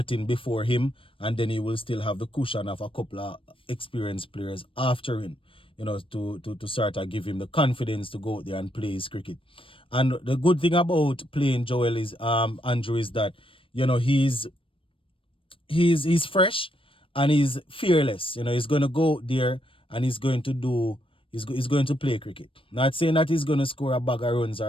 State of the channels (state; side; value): late; right; 0.25 ms